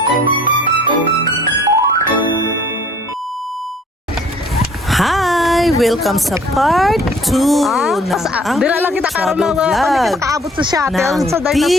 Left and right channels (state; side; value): normal; both; correlation 0.55